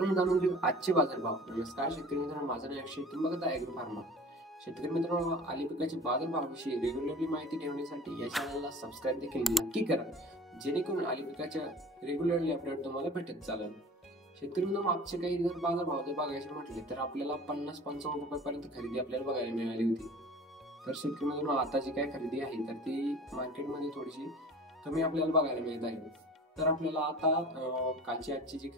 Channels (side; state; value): both; normal; correlation 0.42